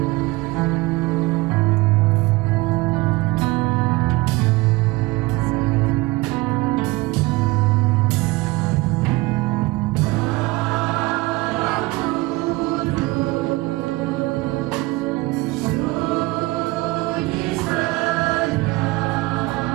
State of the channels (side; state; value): left; quieter; 21.5 dB